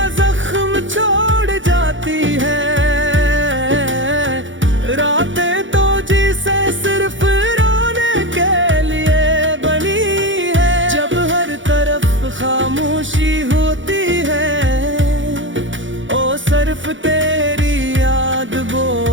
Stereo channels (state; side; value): late; left; 0.56 ms